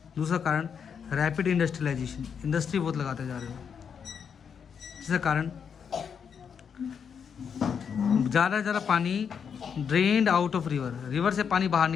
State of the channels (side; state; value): right; quieter; 7.0 dB